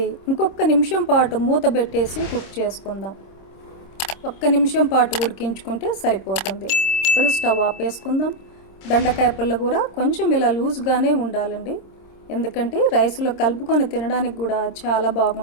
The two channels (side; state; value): right; late; 26 ms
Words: ఇంకొక నిమిషం పాటు మూత పెట్టేసి కుక్ చేసుకుందాం. 1 నిమిషం పాటు ఉడికించుకుంటే సరిపోతుంది. ఇప్పుడు స్టవ్ ఆపేసుకుందాం. బెండకాయ పుల్లగూర కొంచెం ఇలా లూజ్గానే ఉండాలండి, ఎందుకంటే రైస్లో కలుపుకొని తినడానికి కూడా చాలా